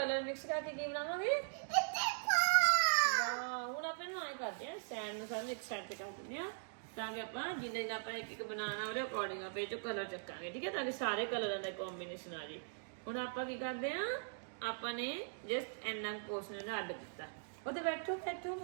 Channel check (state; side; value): silent; left; digital silence